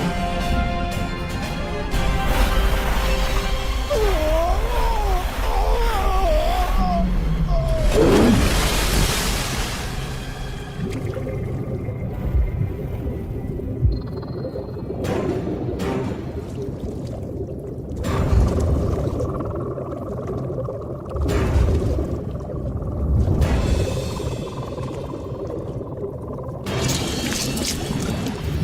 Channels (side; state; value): both; identical; correlation 1.00